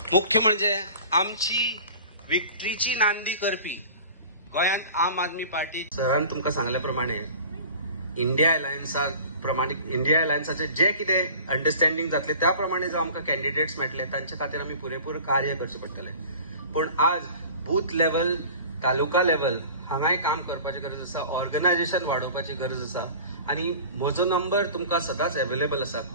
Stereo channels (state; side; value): inverted; both; correlation -0.42